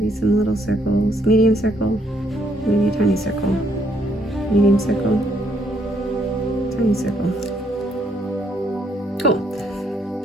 some little circles, medium circle, maybe a tiny circle, medium circle, tiny circle. Cool.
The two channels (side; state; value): both; normal; correlation 0.71